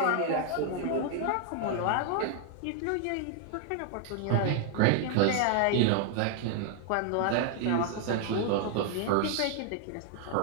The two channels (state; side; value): different; both; correlation 0.00